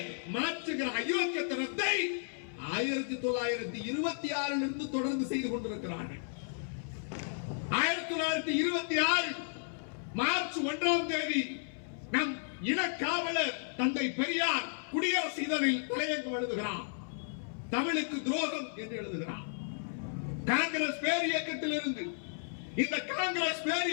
மாற்றுகிற அயோக்கியத்தனத்தை 1926 இருந்து தொடர்ந்து செய்து கொண்டிருக்கிறார்கள். 1926 மார்ச் 1ஆம் தேதி நம் இனக்காவலர் தந்தை பெரியார் குடியரசு இதழில் தலையங்கம் எழுதுகிறார். தமிழுக்கு துரோகம் என்று எழுதுகிறார். காங்கிரஸ் பேர் இயக்கத்தில் இருந்து இந்த காங்கிரஸ் பேர்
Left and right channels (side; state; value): right; silent; 55 dB below the other